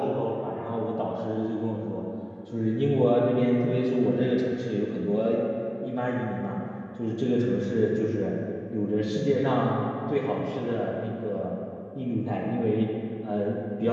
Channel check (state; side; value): identical; both; correlation 1.00